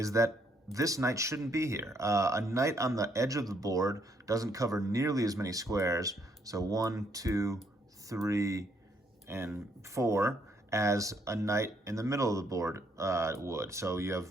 that this knight shouldn't be here. A knight on the edge of the board doesn't cover nearly as many squares, so 1, 2, 3, and 4, as a knight in the middle of the board would. So you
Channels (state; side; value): normal; both; correlation 0.71